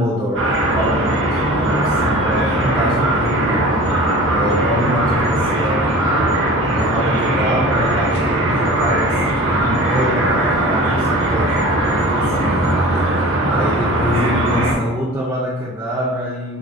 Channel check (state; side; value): normal; both; correlation 0.39